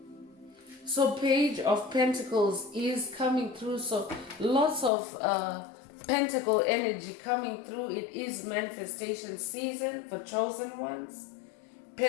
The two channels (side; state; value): right; drops out; at 4.9 s